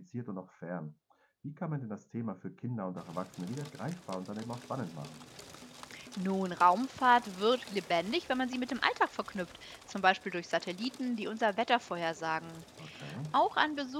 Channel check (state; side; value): identical; both; correlation 1.00